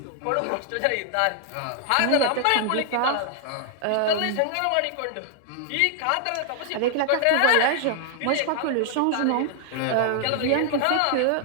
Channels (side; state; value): both; different; correlation 0.00